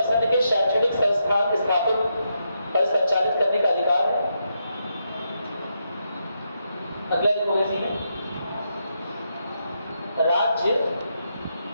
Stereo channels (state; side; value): inverted; both; correlation -0.82